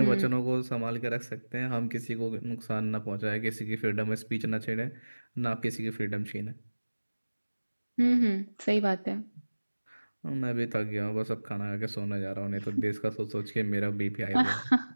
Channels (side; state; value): both; inverted; correlation -1.00